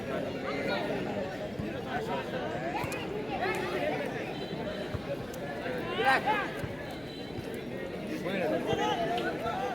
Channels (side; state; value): left; noise; hum, 22 dB below the sound